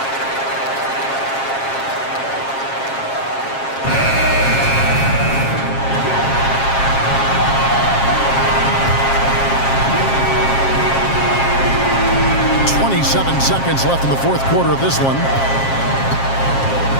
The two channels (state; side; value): late; right; 7.4 ms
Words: .7 seconds left in the fourth quarter of this one.